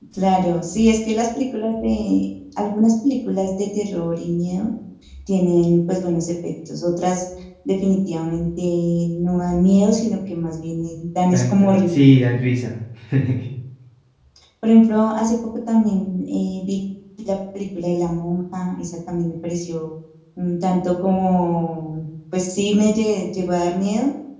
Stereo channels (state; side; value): identical; both; correlation 1.00